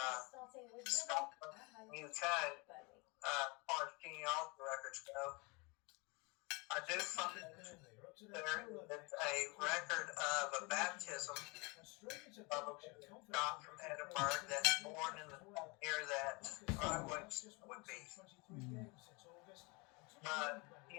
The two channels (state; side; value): quieter; right; 28.3 dB